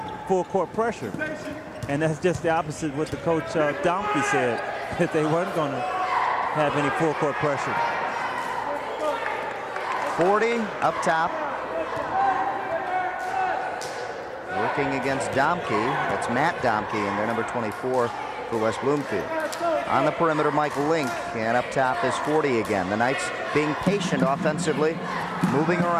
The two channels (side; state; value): both; identical; correlation 1.00